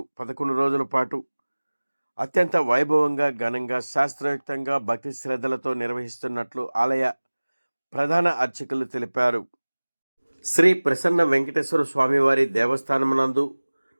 11 రోజుల పాటు అత్యంత వైభవంగా ఘనంగా శాస్త్రయుక్తంగా భక్తి శ్రద్ధలతో నిర్వహిస్తున్నట్లు ఆలయ ప్రధాన అర్చకులు తెలిపారు. శ్రీ ప్రసన్న వెంకటేశ్వర స్వామివారి దేవస్థానమునందు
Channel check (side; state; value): both; inverted; correlation -1.00